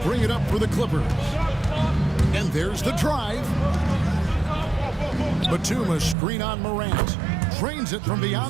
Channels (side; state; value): left; drops out; at 6.2 s